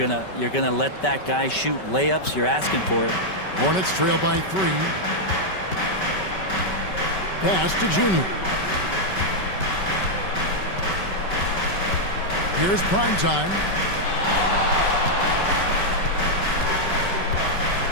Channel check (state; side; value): late; right; 5.2 ms